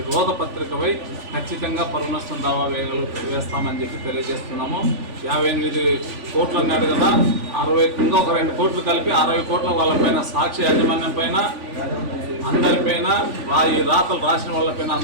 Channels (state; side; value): late; left; 3.5 ms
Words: రోత పత్రికపై ఖచ్చితంగా పరునష్టం దావా వేస్తామని చెప్పి తెలియజేస్తున్నాము. 58 కోట్లు అన్నాడు కదా, 60 ఇంకా ఒక 2 కోట్లు కలిపి 60 కోట్ల వాళ్ళపైన సాక్షి యాజమాన్యం పైన అందరిపైన ఈ రాతలు రాసిన వాళ్ళపైన